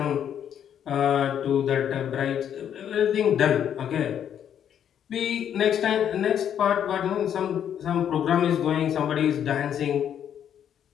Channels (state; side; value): quieter; right; 9.3 dB